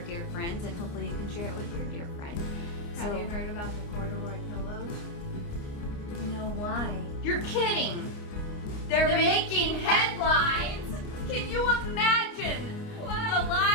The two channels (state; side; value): late; right; 29 ms